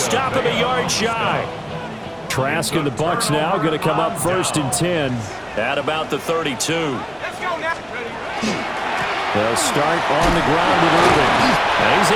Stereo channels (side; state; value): both; identical; correlation 1.00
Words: him a yard shy. Trask and the Bucs now going to come up 1st and 10 at about the 32. They'll start on the ground with Irving. And he's